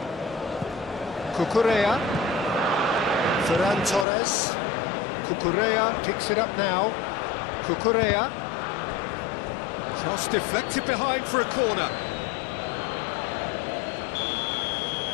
Cucurella. Ferran Torres. Cucurella picks it up now. Cucurella. Cross deflected behind for a corner.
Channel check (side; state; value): right; drops out; at 4.0 s